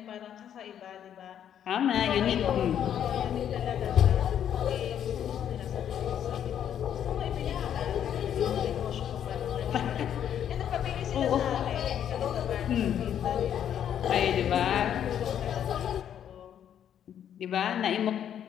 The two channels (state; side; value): quieter; right; 9.6 dB